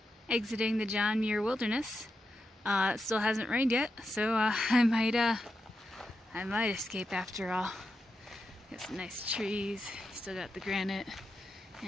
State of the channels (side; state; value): both; normal; correlation 0.87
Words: Exiting the John Muir Wilderness. It still hasn't rained yet, so I might escape after all. Got some nice trees, still got the granite,